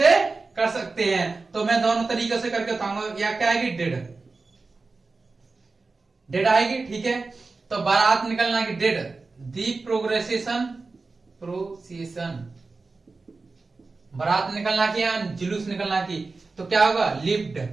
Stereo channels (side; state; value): left; quieter; 3.9 dB